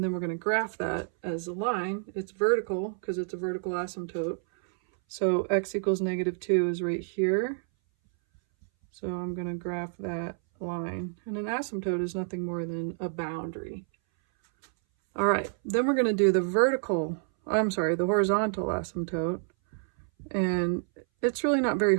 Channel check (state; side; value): silent; left; 59 dB below the other